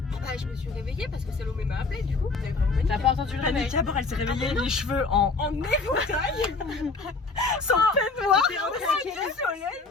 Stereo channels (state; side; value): quieter; right; 4.0 dB